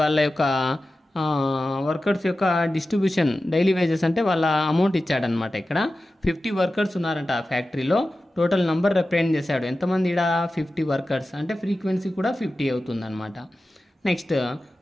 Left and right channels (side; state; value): both; normal; correlation 0.94